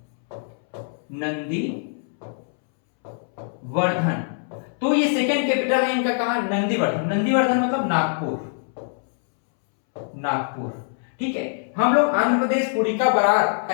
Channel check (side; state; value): right; silent; 63 dB below the other